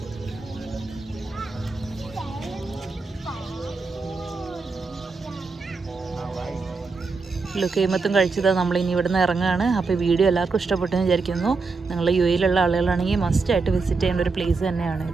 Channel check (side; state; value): left; quieter; 4.2 dB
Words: ലുക്കൈമത്തും കഴിച്ചത് നമ്മളിനി ഇവിടുന്ന് ഇറങ്ങുകയാണ്. അപ്പോൾ വീഡിയോ എല്ലാവർക്കും ഇഷ്ടപ്പെട്ടെന്ന് വിചാരിക്കുന്നു. നിങ്ങൾ യു എയിലുള്ള ആളുകളാണെങ്കിൽ മസ്റ്റായിട്ട് വിസിറ്റ് ചെയ്യേണ്ട ഒരു പ്ലേസ്